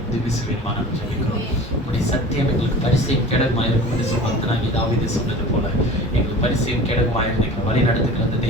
உதவி செய்வேன் நாங்கள் ஜெபிக்கிறோம். உடைய சத்தியம் எங்களுக்கு பரிசையும் கேடகமாக இருக்கும் என்று சொல்லி தாவீது சொன்னது போல எங்களுக்கு பரிசையும் கேடகமாக எங்களை வழி நடத்துகிற அந்த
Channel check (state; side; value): normal; both; correlation 0.38